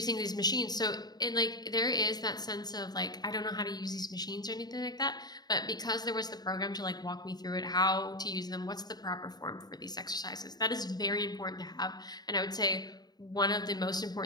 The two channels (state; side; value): late; right; 0.20 ms